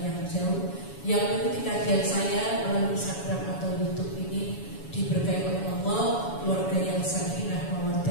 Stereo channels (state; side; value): late; right; 7.1 ms